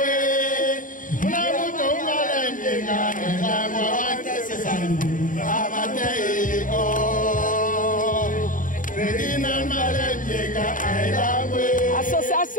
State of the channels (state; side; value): late; right; 0.39 ms